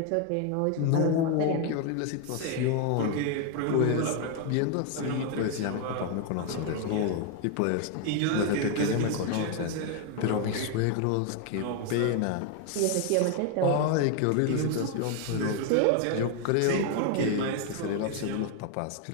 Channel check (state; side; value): different; both; correlation 0.01